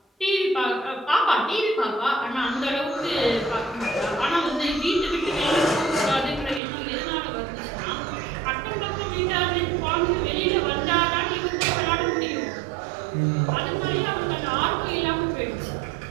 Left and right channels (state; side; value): drops out; left; at 6.6 s